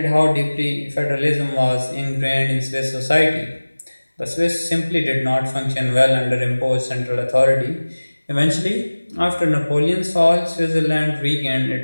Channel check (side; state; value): both; inverted; correlation -1.00